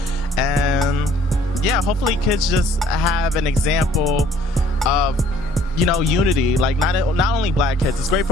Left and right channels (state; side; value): normal; both; correlation 0.58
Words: And yeah, hopefully kids just have an example of, you know, unity. Like not only black kids. It's great